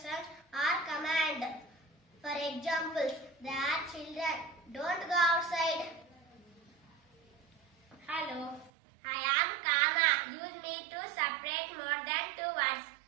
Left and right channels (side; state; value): left; drops out; at 8.7 s